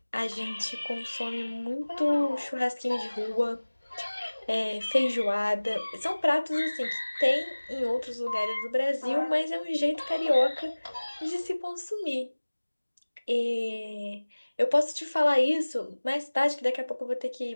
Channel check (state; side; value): inverted; both; correlation -1.00